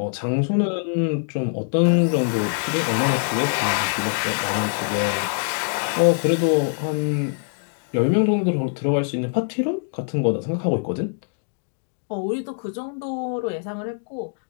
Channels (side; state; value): right; silent; digital silence